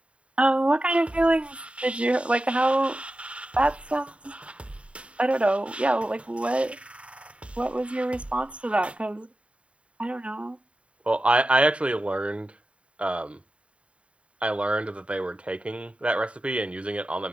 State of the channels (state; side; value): late; left; 0.062 ms